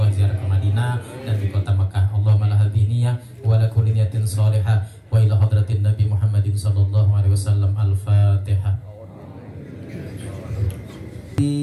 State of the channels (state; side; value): identical; both; correlation 1.00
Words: ziarah ke Madinah dan di kota Makkah. Allahumma la hadiniyah wa la kulli niyatin salihah wa ila hadratin Nabi Muhammadin sallallahu alaihi wasallam. Al-Fatihah.